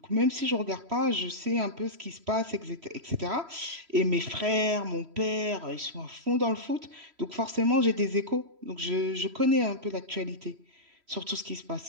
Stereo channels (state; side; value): late; left; 3.1 ms